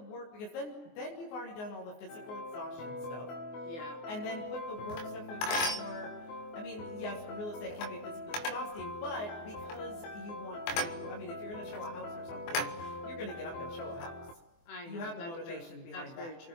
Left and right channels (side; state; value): right; late; 24 ms